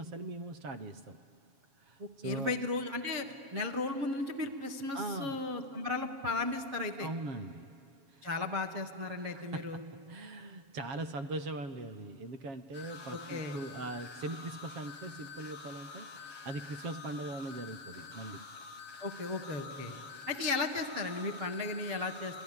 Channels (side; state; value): left; late; 7.2 ms